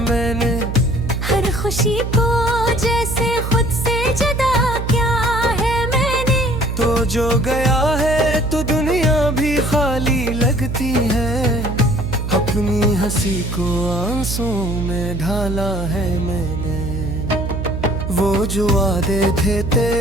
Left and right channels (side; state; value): right; noise; hum, 4 dB below the sound